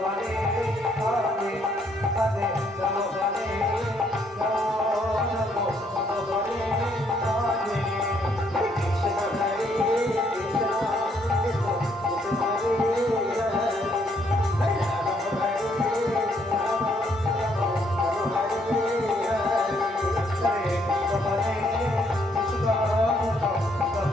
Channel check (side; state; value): both; normal; correlation 0.70